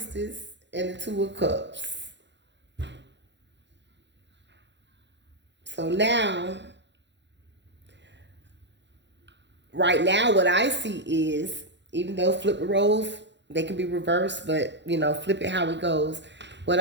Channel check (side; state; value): left; late; 0.52 ms